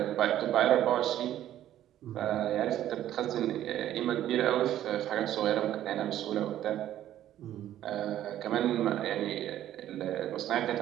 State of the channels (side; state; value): left; quieter; 12.2 dB